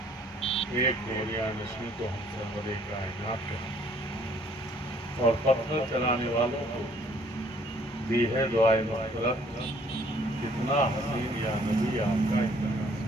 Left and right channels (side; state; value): both; normal; correlation 0.61